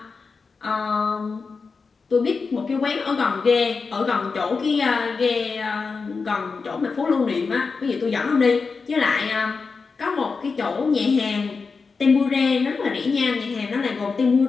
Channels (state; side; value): quieter; right; 4.7 dB